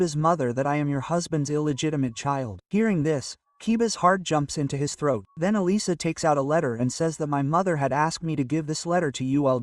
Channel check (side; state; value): both; identical; correlation 1.00